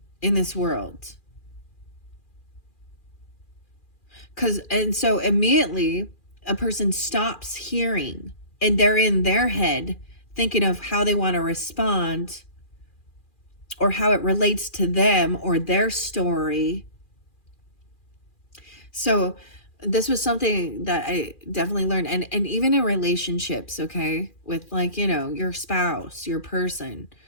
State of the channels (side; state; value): right; late; 2.4 ms